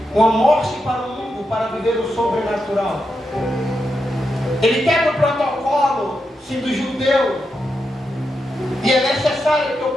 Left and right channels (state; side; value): normal; both; correlation 0.86